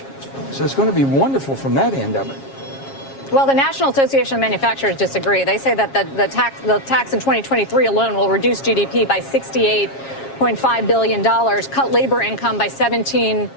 So it's going to be wonderful from that end of it. Well, the National Association of Manufacturers disagree. They say that the tax in 2023 alone will reduce GDP by $68.5 billion, cut labor income by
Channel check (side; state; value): right; late; 7.4 ms